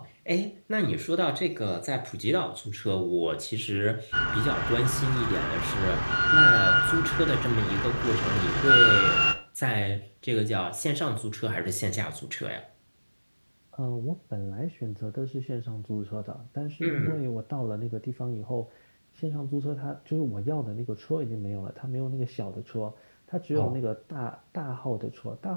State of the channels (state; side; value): inverted; both; correlation -1.00